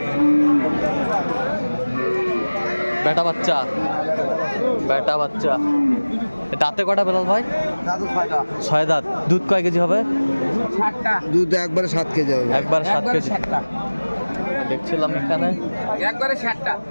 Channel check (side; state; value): both; inverted; correlation -1.00